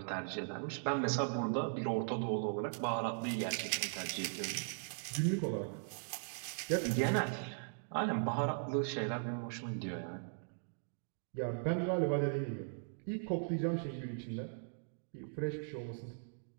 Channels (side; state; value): left; silent; digital silence